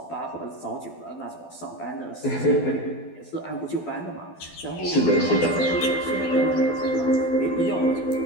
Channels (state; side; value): late; right; 12 ms